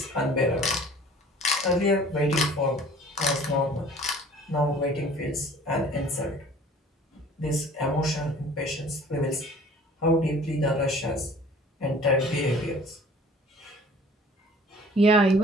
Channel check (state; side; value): normal; both; correlation 0.49